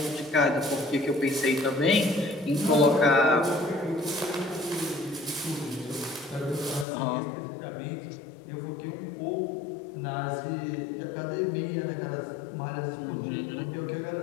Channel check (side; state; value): right; drops out; at 6.9 s